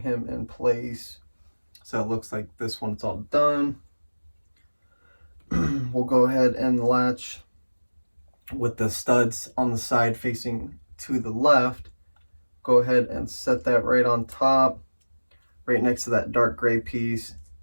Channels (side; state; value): both; inverted; correlation -1.00